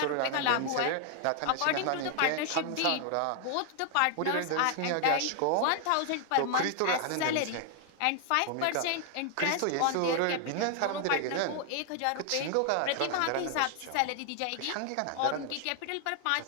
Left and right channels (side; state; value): both; different; correlation 0.00